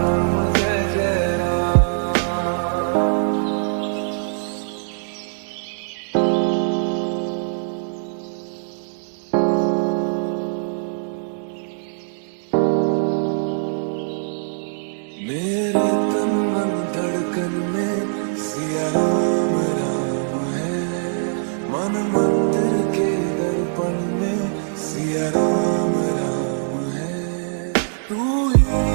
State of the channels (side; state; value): left; silent; 63 dB below the other